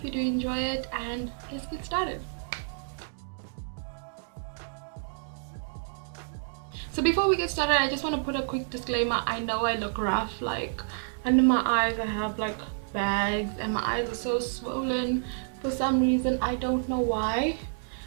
you do enjoy it, and let's get started. So before we get started, I just want to put a quick disclaimer. I know I look rough, like under my eyes I have like bags and my eyes are so swollen for some reason. I don't know why.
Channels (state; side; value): silent; left; digital silence